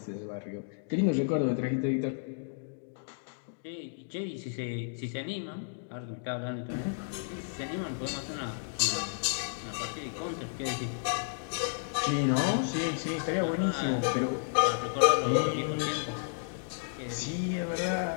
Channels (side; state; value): right; silent; digital silence